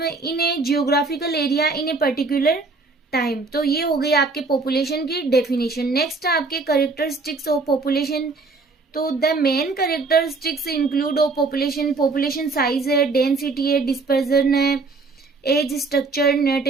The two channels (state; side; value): quieter; left; 3.8 dB